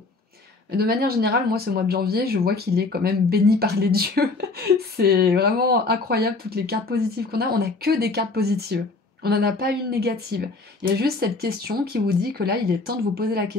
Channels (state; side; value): quieter; right; 3.6 dB